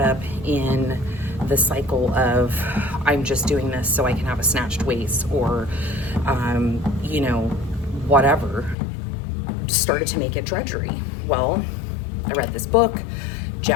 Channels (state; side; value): drops out; right; at 8.8 s